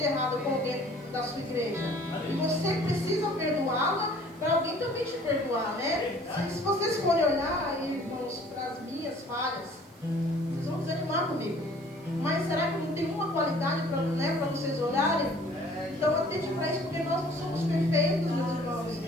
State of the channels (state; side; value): noise; right; hiss, 28 dB below the sound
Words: errado com alguém da sua igreja. E você precisa perdoá-la para alguém também te perdoar, né? Se vocês forem olhar, irmãos, para as minhas falhas, vocês vão desanimar comigo. Mas será que não tem uma qualidade para vocês olharem? Então atente para isso, porque nós não somos perfeitos, meus irmãos.